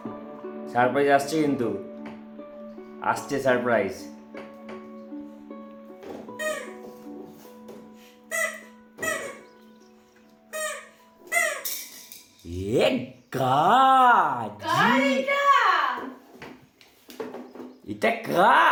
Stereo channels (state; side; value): identical; both; correlation 1.00